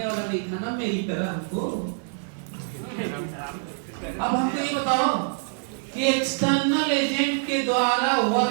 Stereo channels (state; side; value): silent; left; 60 dB below the other